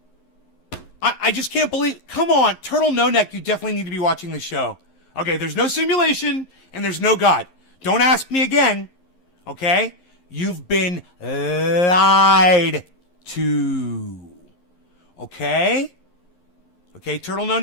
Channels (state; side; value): late; right; 11 ms